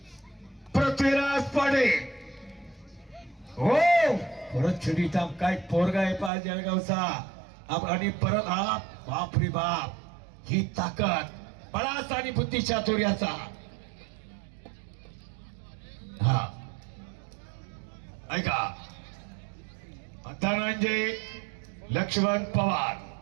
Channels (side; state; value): left; drops out; at 6.3 s